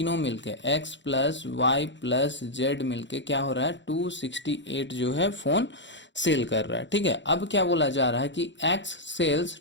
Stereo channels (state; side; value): late; right; 0.53 ms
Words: मिलके x plus Y plus Z मिलके क्या हो रहा है, 268 जो है फोन सेल कर रहा है। ठीक है, अब क्या बोला जा रहा है कि x sells